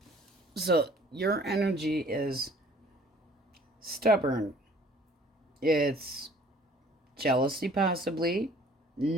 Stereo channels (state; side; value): normal; both; correlation 0.54